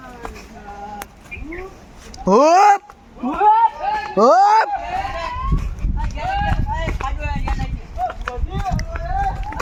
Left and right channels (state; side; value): identical; both; correlation 1.00